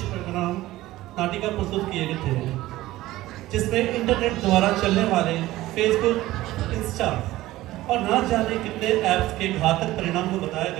नाटिका प्रस्तुत किए गए थे, जिसमें इंटरनेट द्वारा चलने वाले फेसबुक, इंस्टा और ना जाने कितने ऐप्स के घातक परिणाम को बताया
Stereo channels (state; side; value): quieter; left; 16.6 dB